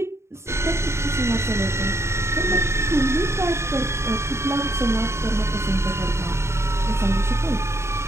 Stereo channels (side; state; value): left; late; 0.13 ms